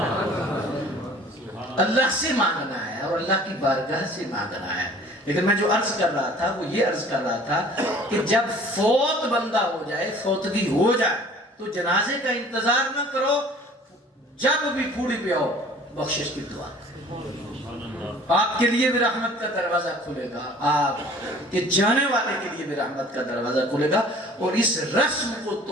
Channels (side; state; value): both; normal; correlation 0.50